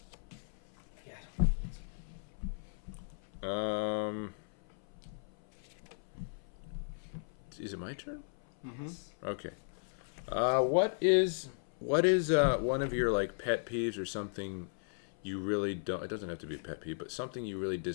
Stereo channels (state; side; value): silent; right; 54 dB below the other